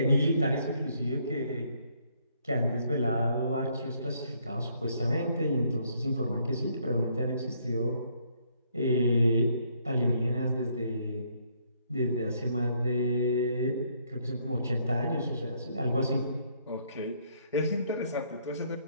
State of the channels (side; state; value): both; inverted; correlation -0.69